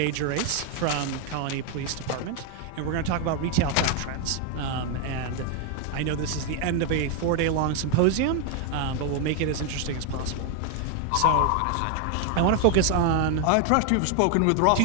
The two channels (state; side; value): different; both; correlation 0.00